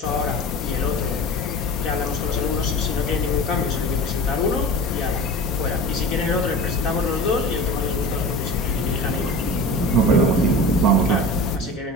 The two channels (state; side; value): normal; both; correlation 0.33